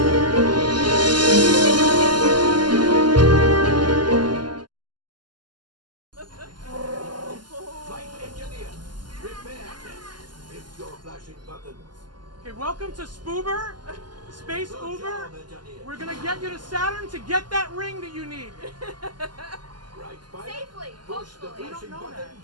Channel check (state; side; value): late; left; 0.71 ms